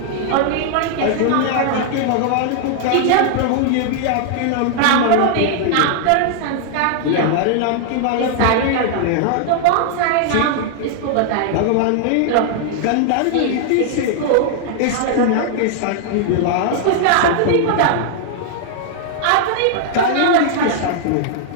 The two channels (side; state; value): both; different; correlation -0.01